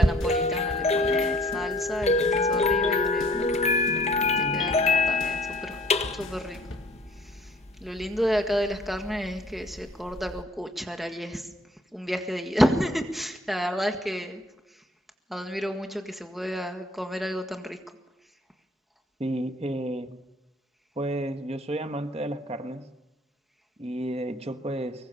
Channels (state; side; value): normal; both; correlation 0.56